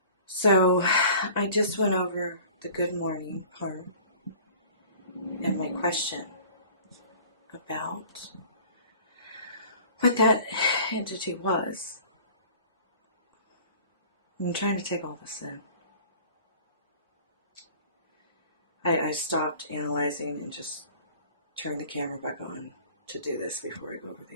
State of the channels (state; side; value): inverted; both; correlation -0.47